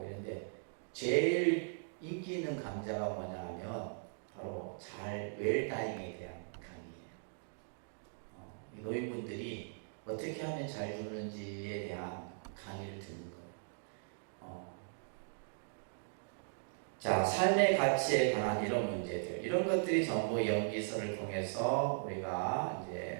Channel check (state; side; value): silent; left; digital silence